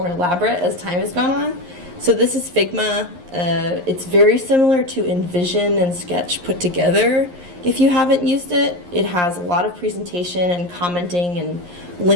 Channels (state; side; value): late; left; 11 ms